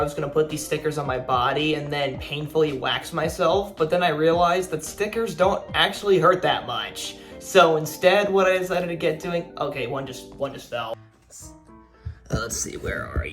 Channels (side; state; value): both; identical; correlation 1.00